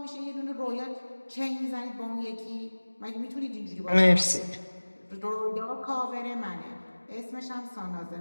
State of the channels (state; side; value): inverted; both; correlation -1.00